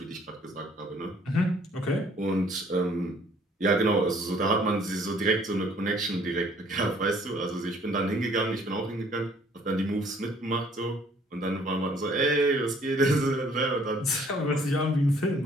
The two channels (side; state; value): both; normal; correlation 0.59